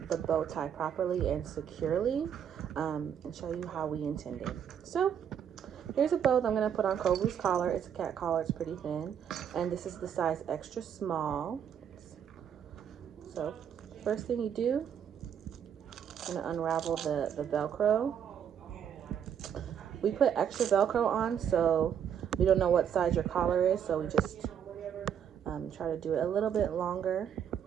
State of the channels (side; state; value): left; quieter; 8.5 dB